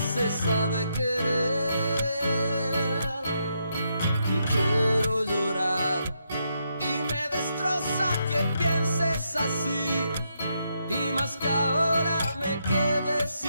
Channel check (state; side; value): inverted; both; correlation -0.80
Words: se sabe querer. Quiero llorar y me destroza que pienses así, y más que ahora me quede